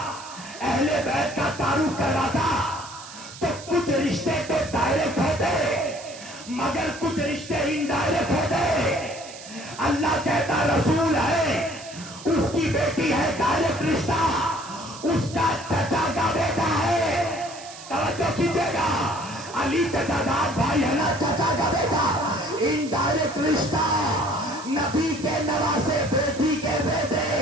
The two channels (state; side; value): noise; right; hiss, 15 dB below the sound